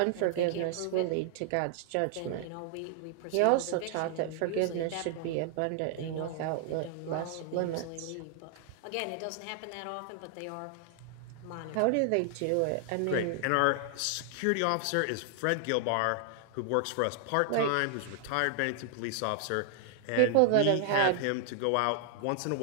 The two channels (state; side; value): different; both; correlation 0.00